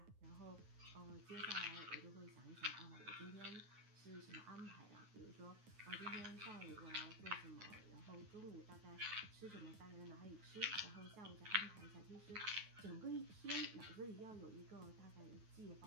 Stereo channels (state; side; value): late; left; 9.4 ms